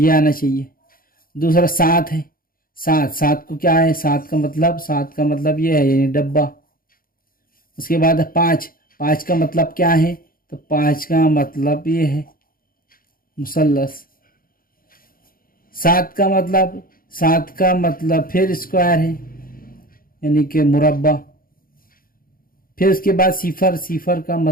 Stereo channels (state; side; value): late; right; 0.42 ms